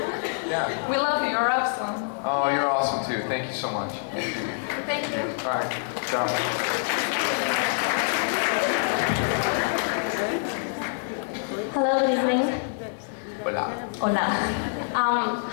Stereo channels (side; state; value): right; silent; digital silence